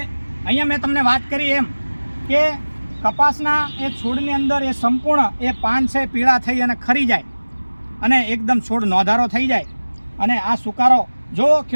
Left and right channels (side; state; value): both; inverted; correlation -1.00